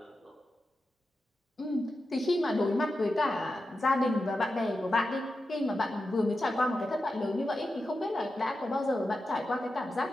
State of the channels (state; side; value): normal; both; correlation 0.90